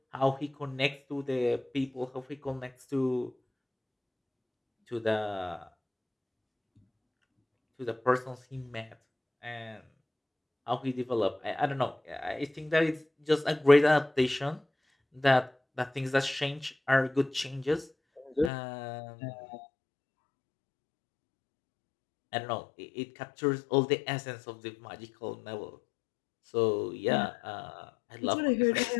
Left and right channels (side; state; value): right; drops out; at 18.5 s